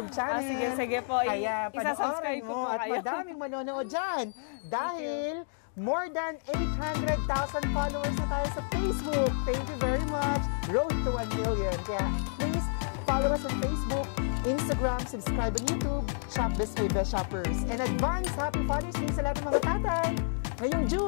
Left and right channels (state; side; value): silent; right; digital silence